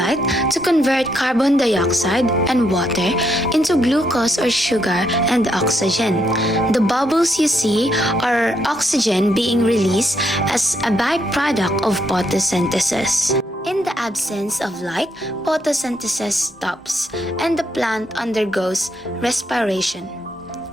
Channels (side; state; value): both; normal; correlation 0.76